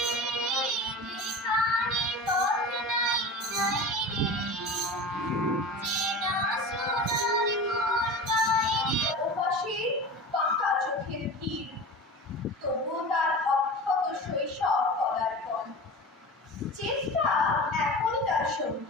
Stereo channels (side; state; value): both; normal; correlation 0.32